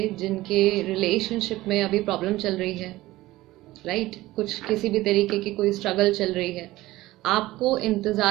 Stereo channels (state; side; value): quieter; left; 17.5 dB